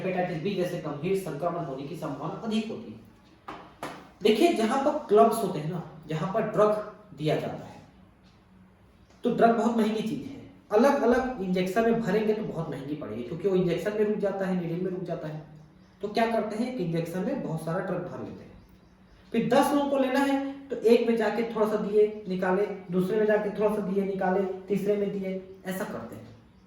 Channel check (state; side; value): identical; both; correlation 1.00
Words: बी जैसे गंभीर संक्रमण होने की संभावना अधिक होती है। देखिए, जहां पर क्लब्स होते हैं ना, जहां पर ड्रग दिया जाता है, तो ड्रग बहुत महंगी चीज है। अलग अलग इंजेक्शन में भरेंगे तो बहुत महंगी पड़ेगी, क्योंकि वो इंजेक्शन में रुक जाता है, नीडल में रुक जाता है। तो क्या करते हैं, एक इंजेक्शन में बहुत सारा ड्रग भर लेते हैं, फिर 10 लोगों को लेना है तो एक में जाके थोड़ा सा दिए निकाले, दूसरे में जाके थोड़ा सा दिए निकाले, तीसरे में दिए, ऐसा करते हैं।